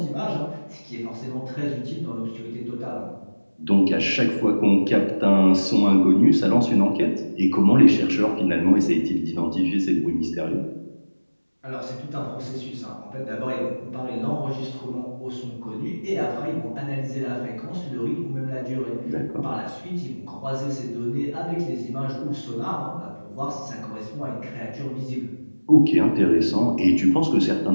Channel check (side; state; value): both; inverted; correlation -1.00